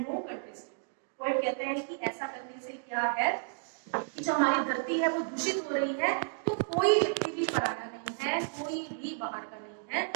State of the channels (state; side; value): silent; left; digital silence